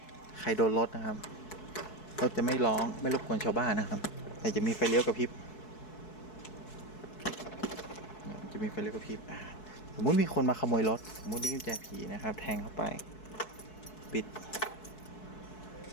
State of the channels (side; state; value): right; late; 4.7 ms